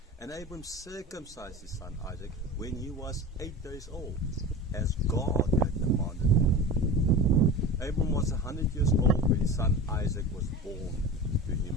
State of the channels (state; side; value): normal; both; correlation 0.32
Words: And Abram circumcised his son Isaac when he was 8 days old, as God had commanded him. Abram was 100 years old when his son Isaac was born to him.